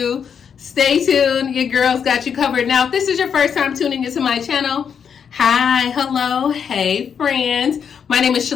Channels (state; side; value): quieter; right; 7.3 dB